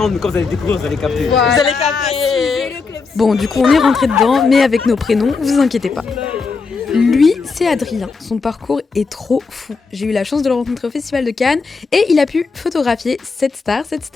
mais quand vous allez découvrir, vous allez capter. Vous allez capter. Bon, du coup, on est rentré dedans, mais avec nos prénoms, vous inquiétez pas. Lui, c'est Adrien. Son parcours est trop fou. J'ai eu la chance de le rencontrer au Festival de Cannes et il a pu photographier cette star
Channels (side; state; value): right; quieter; 4.6 dB